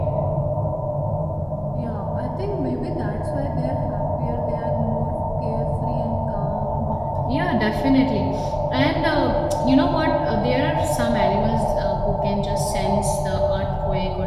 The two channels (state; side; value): identical; both; correlation 1.00